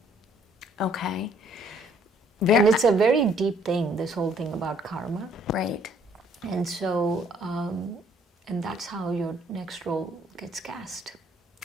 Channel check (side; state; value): both; normal; correlation 0.63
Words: Okay. And it's a very deep thing, this whole thing about karma. Right. And so, and that's how your next role gets cast.